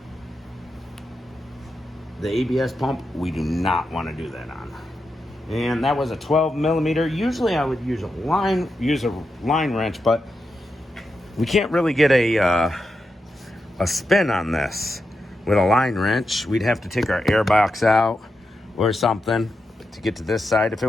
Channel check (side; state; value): both; normal; correlation 0.87